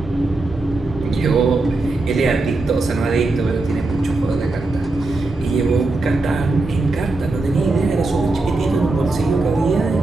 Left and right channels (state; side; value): quieter; left; 3.2 dB